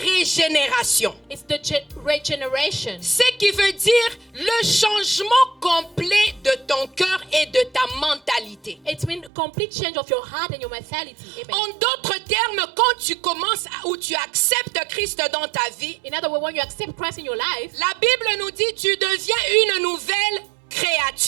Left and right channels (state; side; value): drops out; left; at 9.3 s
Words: régénération. is the regeneration. Ce qui veut dire le changement complet de ton cœur et de ta mentalité. It means complete change of your heart and your mentality. Amen. En d'autres termes, quand tu commences ou tu acceptes Christ dans ta vie, In other words, when you accept Christ in your life, la Bible nous dit tu deviens une nouvelle